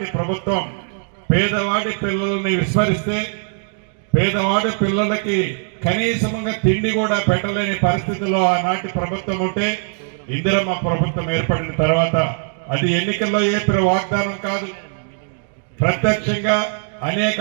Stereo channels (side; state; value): left; silent; 58 dB below the other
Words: ప్రభుత్వం పేదవాడి పిల్లల్ని విస్మరిస్తే పేదవాడి పిల్లలకి కనీసంగా తిండి కూడా పెట్టలేని పరిస్థితిలో ఆనాటి ప్రభుత్వం ఉంటే ఇందిరమ్మ ప్రభుత్వం ఏర్పడిన తర్వాత అది ఎన్నికల్లో చెప్పిన వాగ్దానం కాదు, ప్రత్యక్షంగా అనేక